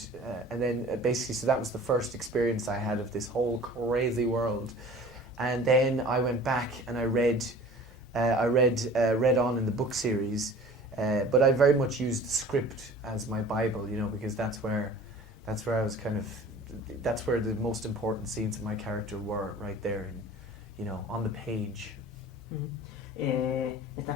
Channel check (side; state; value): both; normal; correlation 0.44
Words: and then basically, so that was the first experience I had of this whole crazy world. And then I went back and I read on in the book series, but I very much used the script as my Bible, you know, because that's where I was kind of, that's where the most important scenes of my character were, right there, in, you know, on the page.